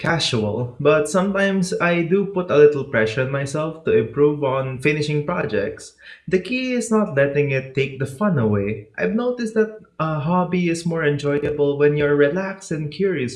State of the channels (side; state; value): both; identical; correlation 1.00